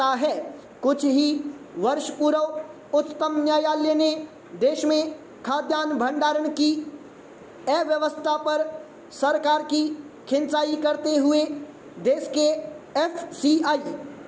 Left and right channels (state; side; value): identical; both; correlation 1.00